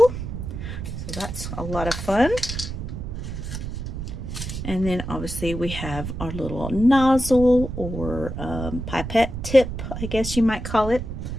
So that's a lot of fun. And then obviously we have our little nozzle or pipette tip, I guess you might call it,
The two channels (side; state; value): right; noise; rumble, 6 dB below the sound